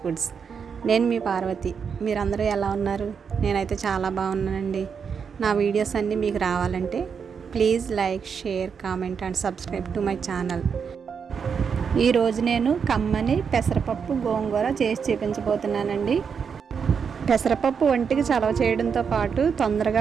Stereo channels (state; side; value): quieter; left; 6.5 dB